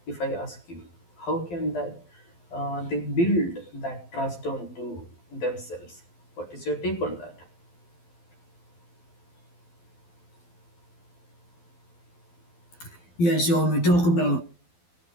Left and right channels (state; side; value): late; right; 12 ms